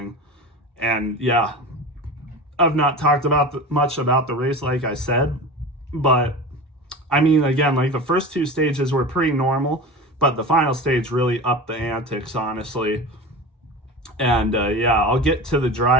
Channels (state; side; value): normal; both; correlation 0.31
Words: And yeah, I've not talked much about the race, like I said, but I mean, again, like the first 2 stages were pretty normal, but the final stage really upped the antics, honestly. And yeah, I'll get to the